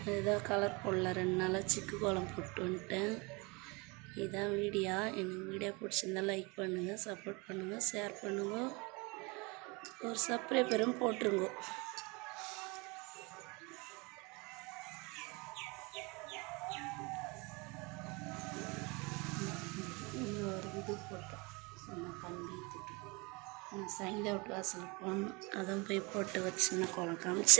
இதுதான் கலர் போடல. 2 நாளாக சிக்கு கோலம் போட்டு வந்துட்டேன். இதுதான் வீடியோ. எனக்கு வீடியோ பிடிச்சிருந்தா லைக் பண்ணுங்கள், சப்போர்ட் பண்ணுங்கள், ஷேர் பண்ணுங்க, ஒரு சப்ஸ்கிரைபரும் போட்டுருங்க. இது போட்டோம் சொன்ன கம்பி திட்டு நான் சைந்தா விட்டு வாசல் போகணும். அதான் போய் போட்டு வச்சுன்னா கோலம்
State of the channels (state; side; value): quieter; left; 27.7 dB